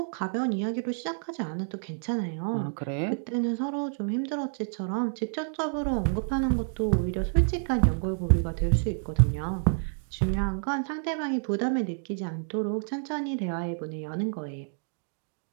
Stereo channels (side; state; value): left; silent; digital silence